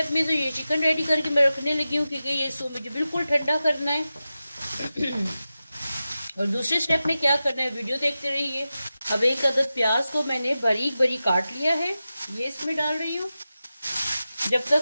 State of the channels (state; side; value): inverted; both; correlation -0.93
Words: में तो ये चिकन रेडी करके मैं रखने लगी हूँ, क्योंकि ये इसको मुझे बिल्कुल ठंडा करना है। और दूसरे स्टेप में क्या करना है, वीडियो देखते रहिए। अब 1 अदद प्याज को मैंने बारीक बारीक काट लिया है, ये इसमें डाल रही हूँ। जब